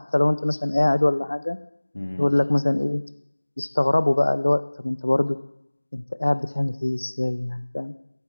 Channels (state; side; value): inverted; both; correlation -1.00